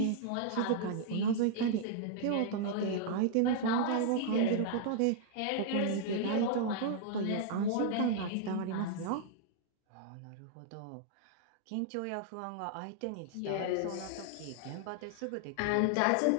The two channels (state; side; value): different; both; correlation -0.01